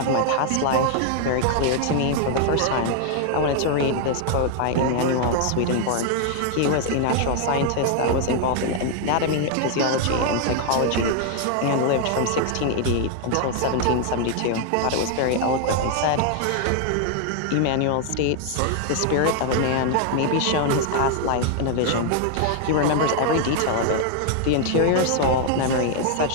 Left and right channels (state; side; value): different; both; correlation 0.00